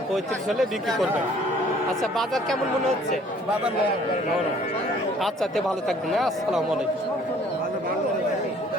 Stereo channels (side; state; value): both; normal; correlation 0.57